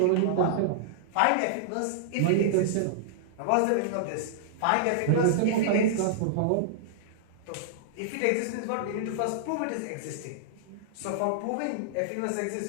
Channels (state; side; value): different; both; correlation -0.01